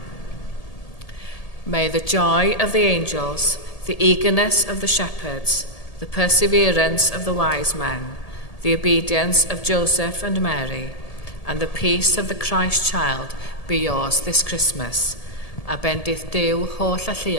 May the joy of the angels, the eagerness of the shepherds, the perseverance of the wise men, the obedience of Joseph and Mary, and the peace of the Christ child be yours this Christmas. A bendith Duw holl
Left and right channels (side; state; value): right; late; 1.7 ms